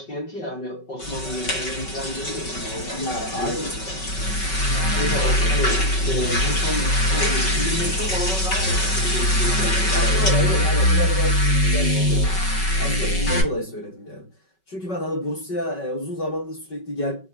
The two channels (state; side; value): late; right; 5.3 ms